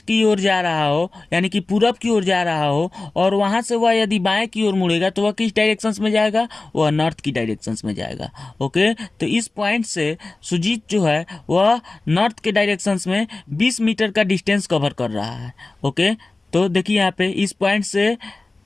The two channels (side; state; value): right; quieter; 3.2 dB